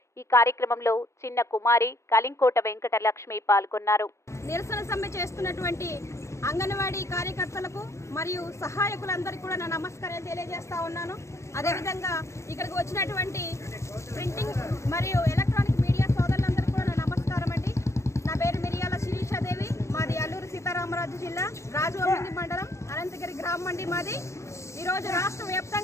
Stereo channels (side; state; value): right; late; 0.14 ms